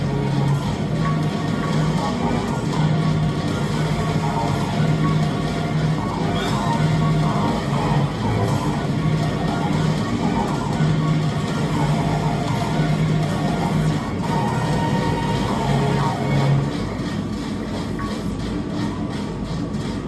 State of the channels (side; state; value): both; identical; correlation 1.00